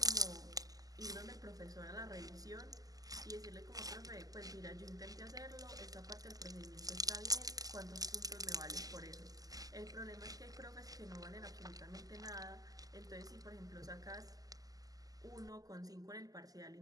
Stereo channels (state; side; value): late; left; 0.17 ms